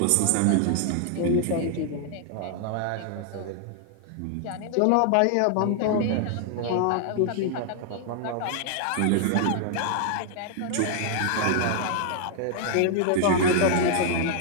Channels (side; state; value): both; different; correlation 0.00